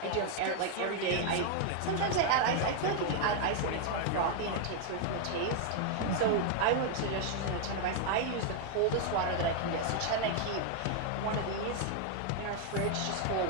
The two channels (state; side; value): different; both; correlation 0.00